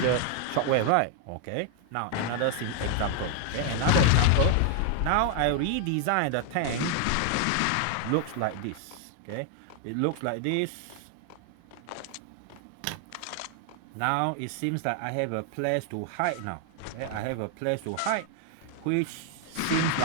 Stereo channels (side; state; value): both; different; correlation 0.00